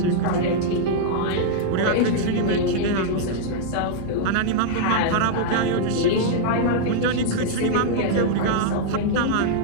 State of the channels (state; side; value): different; both; correlation -0.01